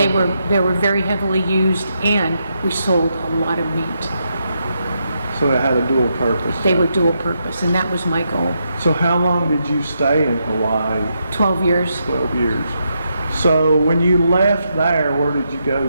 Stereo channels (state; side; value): inverted; both; correlation -0.81